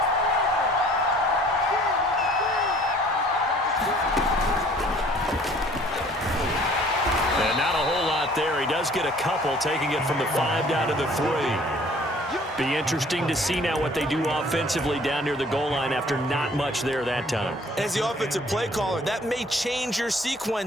And not a whole lot there. He does get a couple, taking it from the 5 down to the 3. Be interesting to see now what they do offensively down near the goal line after not much there that time. As the offensive play caller, that may change your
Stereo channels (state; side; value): normal; both; correlation 0.54